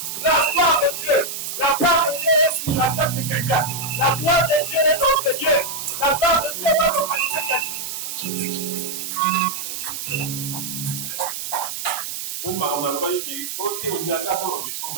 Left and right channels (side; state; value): right; noise; hiss, 6 dB below the sound